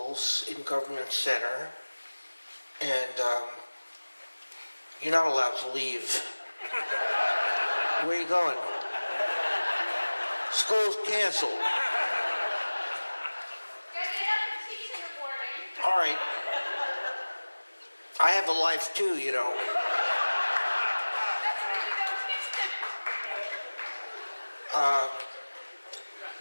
in Government Center, and you're not allowed to leave. Where are you going? School's canceled. All right. I have a life too, you know.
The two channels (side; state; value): both; inverted; correlation -1.00